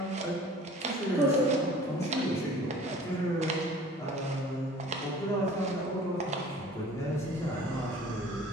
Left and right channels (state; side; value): normal; both; correlation 0.47